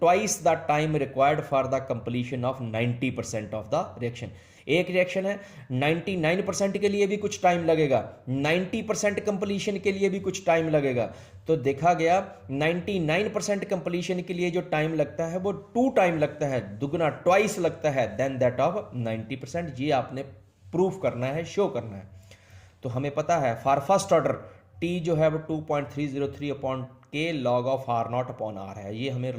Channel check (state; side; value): identical; both; correlation 1.00